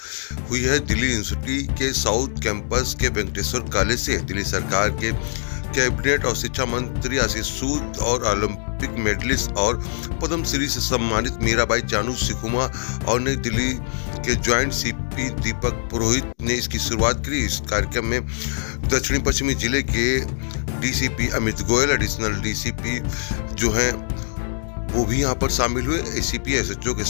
हुई है दिल्ली यूनिवर्सिटी के साउथ कैंपस के वेंकटेश्वर कॉलेज से। दिल्ली सरकार के कैबिनेट और शिक्षा मंत्री आशीष सूद और ओलंपिक मेडलिस्ट और पद्म श्री से सम्मानित मीराबाई चानू सिखुमा और नई दिल्ली के ज्वाइंट सीपी दीपक पुरोहित ने इसकी शुरुआत की। इस कार्यक्रम में दक्षिणी पश्चिमी जिले के DCP Amit Goyal, additional DCP जो हैं वो भी यहाँ पर शामिल हुए। एसीपी एसएचओ के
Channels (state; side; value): silent; right; digital silence